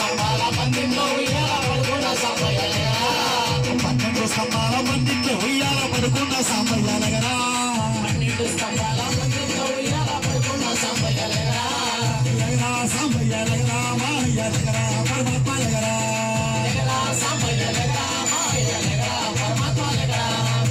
పందిట్లో ఉయ్యాల పడుకున్న సాంబయ్య దగ్గర 12 స్తంభాల పందిట్లో ఉయ్యాల పడుకున్న సాంబయ్య దగ్గర 12 స్తంభాల పందిట్లో ఉయ్యాల పడుకున్న సాంబయ్య దగ్గర సాంబయ్య దగ్గర మాయ్య దగ్గర పరమాత్మ దగ్గర సాంబయ్య దగ్గర మాయ్య దగ్గర పరమాత్మ దగ్గర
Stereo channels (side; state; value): both; identical; correlation 1.00